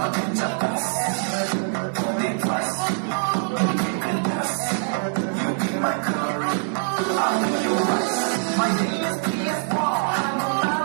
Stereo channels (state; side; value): silent; left; digital silence